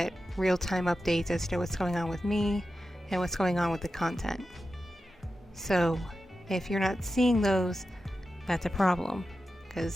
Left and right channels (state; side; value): normal; both; correlation 0.92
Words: real-time updates as to what's going on with me and what's going on with the content. So if you're not seeing those, that's a problem,